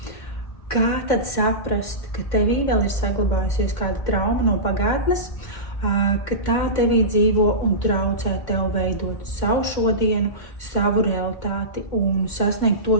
kā tad saprast, ka tevī vēl ir saglabājusies kāda trauma no pagātnes, ka tā tevī dzīvo un traucē tev veidot savu šodienu, savu realitāti un sasniegt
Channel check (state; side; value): late; right; 2.1 ms